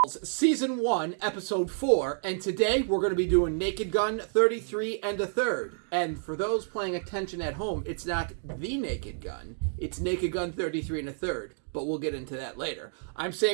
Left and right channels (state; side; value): silent; left; digital silence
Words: Season 1, Episode 4, and today we're going to be doing Naked Gun 33 and a third. And for those paying attention at home, it's not the Naked Gun, it's Naked Gun 33 and a third, but we'll get into that later. I'm